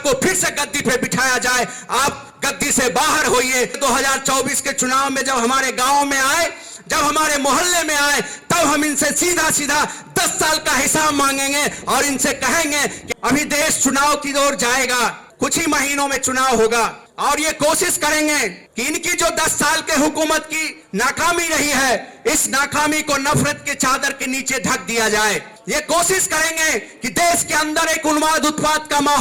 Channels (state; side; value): identical; both; correlation 1.00